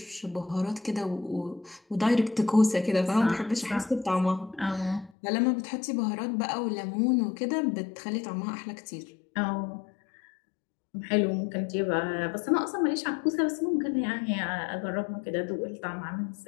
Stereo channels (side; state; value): right; drops out; at 5.1 s